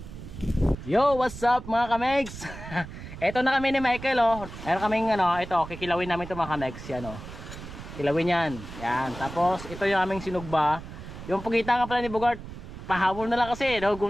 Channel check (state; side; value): noise; right; rumble, 12 dB below the sound